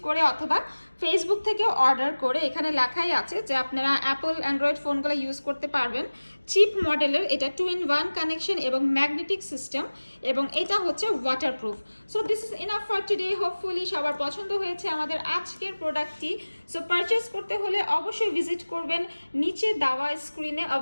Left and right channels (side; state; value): both; inverted; correlation -1.00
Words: করে অথবা ফেসবুক থেকে অর্ডার করে। এখানে লেখাই আছে যে আপনারা অ্যাপল অ্যান্ড্রয়েড ফোনগুলো ইউজ করতে পারবেন। চিপ মডেলের এটা 2-in-1 কানেকশন এবং ম্যাগনেটিক সিস্টেম, এবং এটা হচ্ছে waterproof. So this is enough for today. Hopefully সবার পছন্দ হয়েছে আমাদের আজকের প্রোডাক্টটি। সো পারচেস করতে হলে অবশ্যই ভিজিট করবেন নিচে দেওয়া স্ক্রিনে